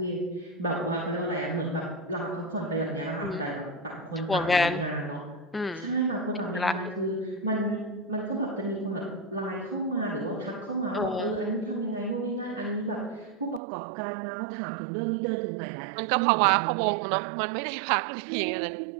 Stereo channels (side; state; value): left; drops out; at 13.6 s